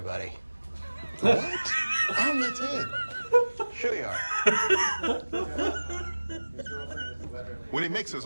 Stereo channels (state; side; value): inverted; both; correlation -1.00